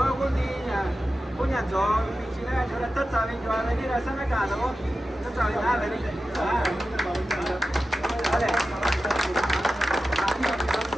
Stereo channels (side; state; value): both; normal; correlation 0.93